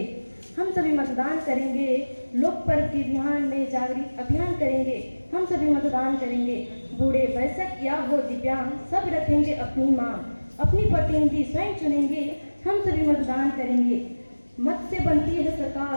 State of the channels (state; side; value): inverted; both; correlation -1.00